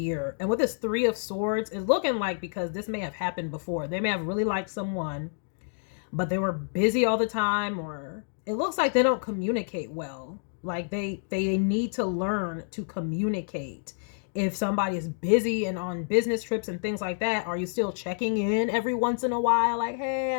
And with this Three of Swords, it's looking like, because this may have happened before, they may have really liked someone, but they were busy all the time, or it looks like they don't communicate well. Like they need to learn to communicate. If somebody is busy and on business trips and things like that, are you still checking in every once in a while? Like,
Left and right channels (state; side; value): silent; right; digital silence